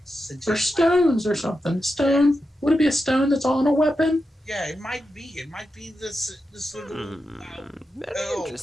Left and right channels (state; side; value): normal; both; correlation 0.89